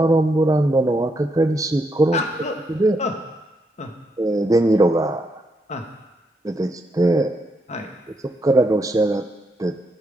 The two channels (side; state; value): both; normal; correlation 0.79